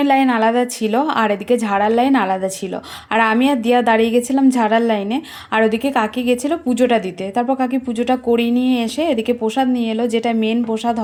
লাইন আলাদা ছিল, আর এদিকে ঝাড়ার লাইন আলাদা ছিল। আর আমি আর দিয়া দাঁড়িয়ে গেছিলাম ঝাড়ার লাইনে, আর ওদিকে কাকি গেছিলো পুজোটা দিতে। তারপর কাকি পুজোটা করিয়ে নিয়ে এসে এদিকে প্রসাদ নিয়ে এলো, যেটা মেন প্রসাদ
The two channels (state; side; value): identical; both; correlation 1.00